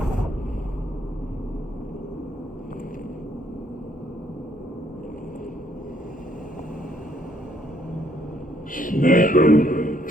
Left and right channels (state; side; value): normal; both; correlation 0.68